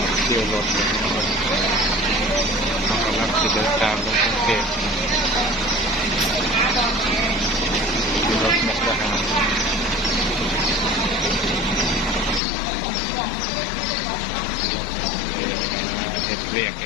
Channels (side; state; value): right; drops out; at 12.4 s